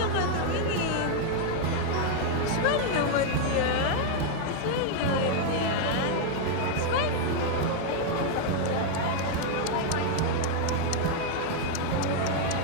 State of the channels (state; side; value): different; both; correlation 0.00